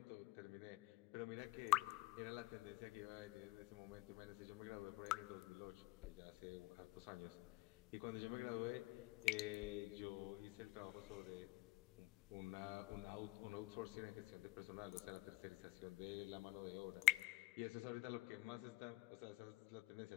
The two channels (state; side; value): quieter; right; 20.9 dB